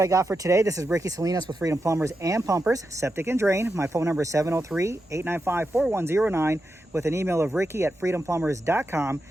I got for today. This is Ricky Salinas with Freedom Plumbers and Pumpers, Septic and Drain. My phone number is 703-895-4109 with an email of ricky@freedomplumbers.com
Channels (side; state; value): both; normal; correlation 0.88